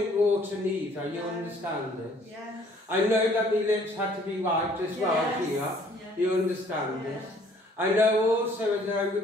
water neither, you understand this? I know that my lips had to be wiped as well here, you understand this? I know also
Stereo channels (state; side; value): normal; both; correlation 0.59